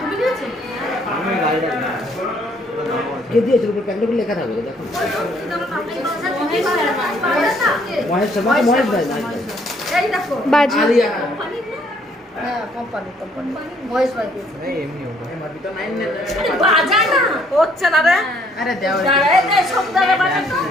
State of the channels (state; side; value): normal; both; correlation 0.65